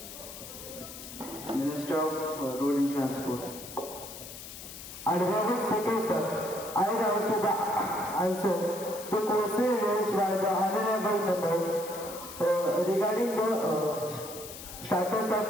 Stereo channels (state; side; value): noise; left; hiss, 12 dB below the sound